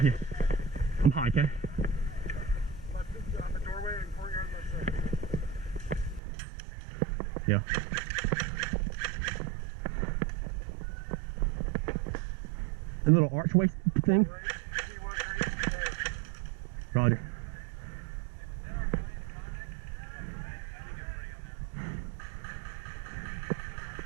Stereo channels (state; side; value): drops out; left; at 6.2 s